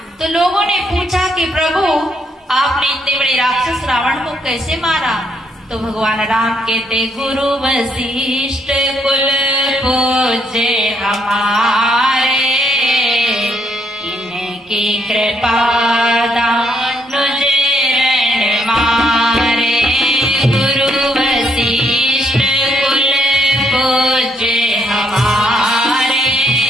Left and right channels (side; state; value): both; normal; correlation 0.73